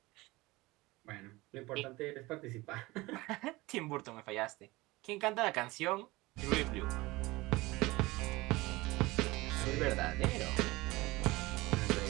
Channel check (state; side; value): quieter; left; 21.1 dB